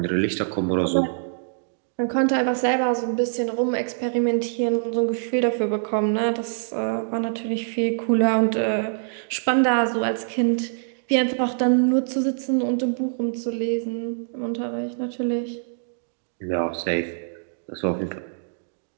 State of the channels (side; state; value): left; silent; digital silence